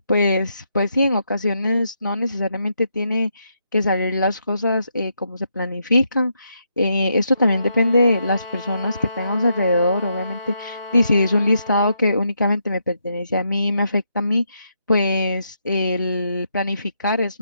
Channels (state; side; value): inverted; both; correlation -0.79